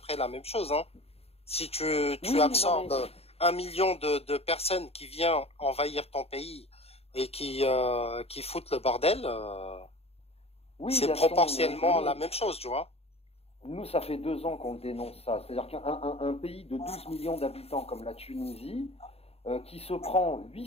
la même chose. Hein. Si tu absorbes 1 million de personnes qui viennent envahir ton pays et qui foutent le bordel, c'est proportionnellement la même chose, tu vois. Nous, ça fait 2 ans qu'on dénonce ça. C'est-à-dire qu'un pays de 12 millions d'habitants comme la Tunisie, qui se prend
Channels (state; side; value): late; right; 0.29 ms